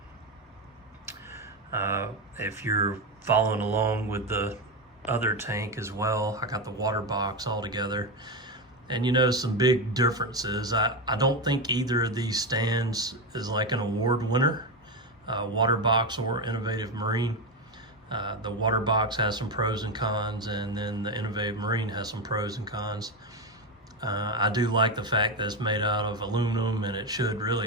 If you're following along with the other tank as well, I got the water box all together. And you know, some big differences. I don't think either of these stands is like an award winner, water box or innovative marine. The water box has some pros and cons, and then the innovative marine has some pros and cons. I do like the fact that it's made out of aluminum and it should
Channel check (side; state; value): both; normal; correlation 0.13